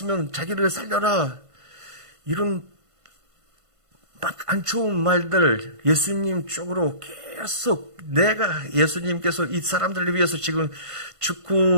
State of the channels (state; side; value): late; left; 1.5 ms